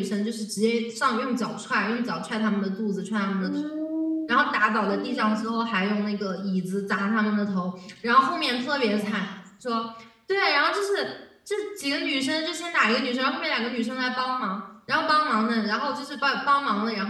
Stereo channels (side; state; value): both; identical; correlation 1.00